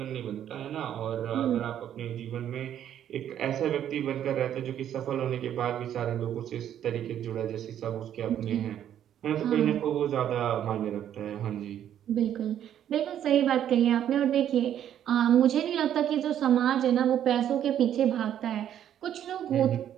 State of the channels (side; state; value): left; quieter; 10.4 dB